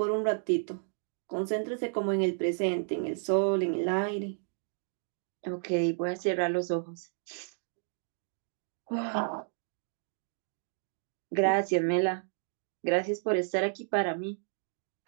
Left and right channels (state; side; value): silent; left; digital silence